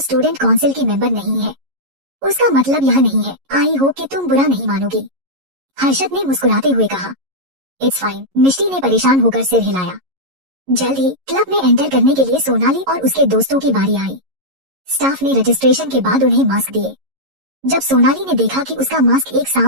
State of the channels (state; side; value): late; left; 11 ms